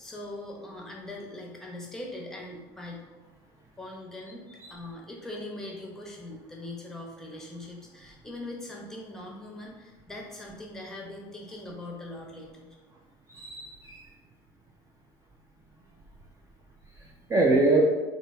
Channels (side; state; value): both; normal; correlation 0.48